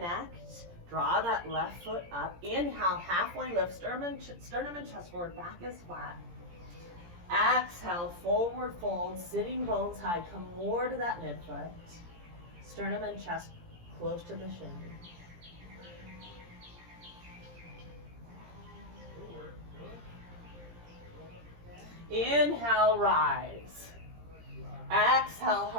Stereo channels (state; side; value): late; left; 17 ms